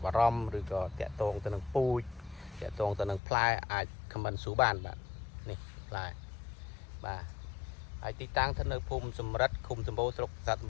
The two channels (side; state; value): right; drops out; at 3.2 s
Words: ់អារម្មណ៍ឬក៏តាក់ទងទៅនឹងពូជតាក់ទងទៅនឹងផ្លែអាចខមមិនស៊ូបានបាទនេះផ្លែបាទហើយទីតាំងស្ថិតនៅភូមិសំរិទ្ធឃុំសម្បូរស្រុកប្រាសាទសម